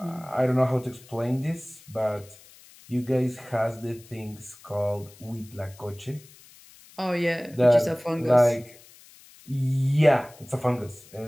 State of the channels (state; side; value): noise; left; hiss, 23 dB below the sound